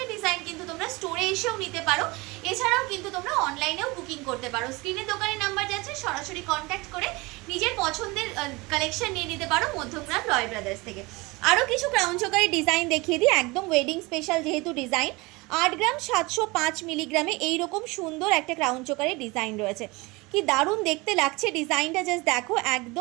ডিজাইন কিন্তু তোমরা স্টোরে এসেও নিতে পারো, এছাড়াও কিন্তু তোমরা অনলাইনেও বুকিং করতে পারো। স্ক্রিনে দোকানের নাম্বার যাচ্ছে, সরাসরি কন্ট্যাক্ট করে নিজের পছন্দের কালেকশন নিয়ে নিতে পারো মধ্যগ্রাম রয় ব্রাদার্স থেকে। আরও কিছু ক্রাউন চোকারের ডিজাইন দেখিয়ে দিই, একদম ওয়েডিং স্পেশাল যেহেতু ডিজাইন। 8 গ্রাম 705 মিলিগ্রামে এইরকম সুন্দর একটা ক্রাউন চোকারের ডিজাইন রয়েছে। কি দারুণ দেখতে লাগছে ডিজাইনটা, জাস্ট দেখো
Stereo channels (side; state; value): left; quieter; 24.1 dB